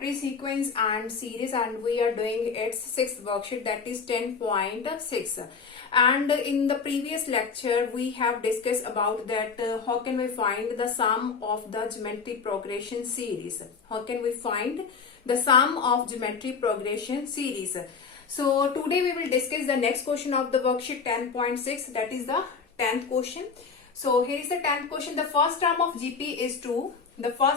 is sequence and series, and we are doing its 6th worksheet, that is 10.6. And in the previous lecture we have discussed about that how can we find the sum of the geometry progression series. How can we find the sum of geometry progression series? So today we will discuss the next question of the worksheet 10.6, that is the 10th question. So here is the 10th question. The first term of GP is 2. The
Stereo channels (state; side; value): quieter; right; 5.4 dB